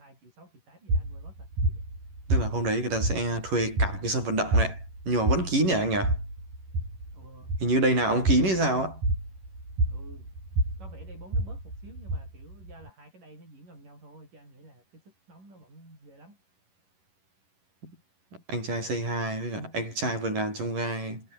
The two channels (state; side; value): late; left; 11 ms